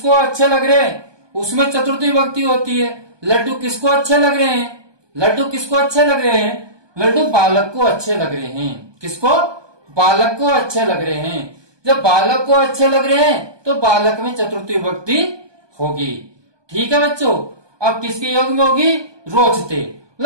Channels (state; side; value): late; left; 1.2 ms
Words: अच्छे लग रहे हैं उसमें चतुर्थी विभक्ति होती है। लड्डू किसको अच्छे लग रहे हैं? लड्डू किसको अच्छे लग रहे हैं? लड्डू बालक को अच्छे लग रहे हैं। किसको? बालक को अच्छे लग रहे हैं। जब बालक को अच्छे लग रहे हैं तो बालक में चतुर्थी विभक्ति होगी। ठीक है बच्चों। अब किसके योग में होगी? रोचते,